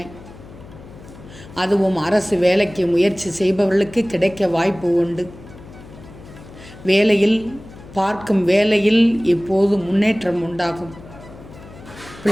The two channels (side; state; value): left; noise; hum, 19 dB below the sound